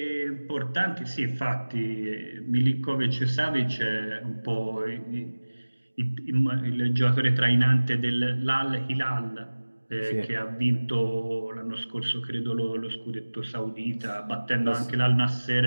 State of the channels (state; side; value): inverted; both; correlation -1.00